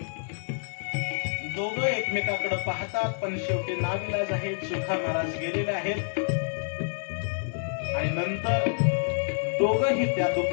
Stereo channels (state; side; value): silent; right; 56 dB below the other